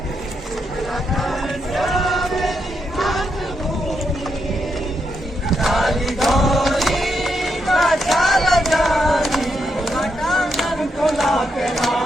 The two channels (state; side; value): normal; both; correlation 0.82